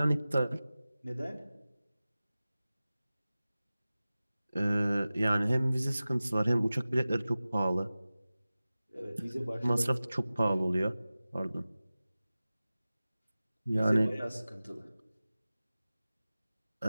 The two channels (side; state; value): both; inverted; correlation -0.97